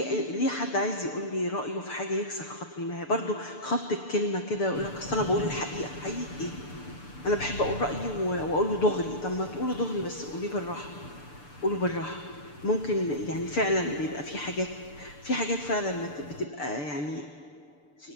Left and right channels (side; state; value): right; late; 6.8 ms